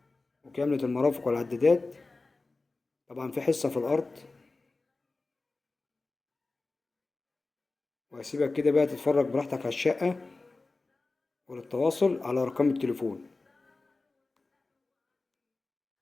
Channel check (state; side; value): quieter; right; 3.5 dB